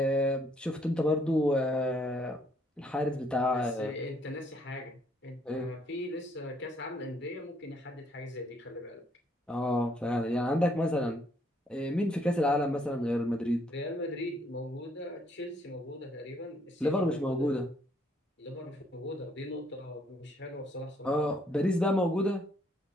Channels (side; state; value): both; normal; correlation 0.68